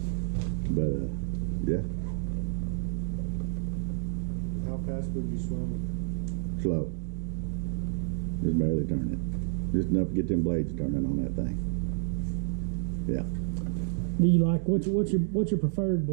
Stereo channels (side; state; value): left; silent; digital silence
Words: But yeah, How fast would you swim? slow. Just barely turn it. Just enough to get them blades turning on that thing. Yeah. Do you like what's your preferred